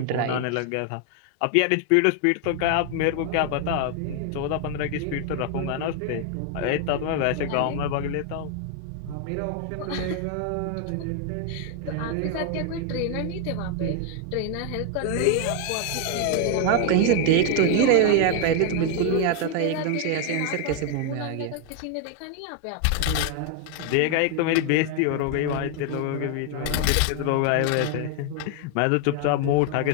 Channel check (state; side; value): different; both; correlation 0.00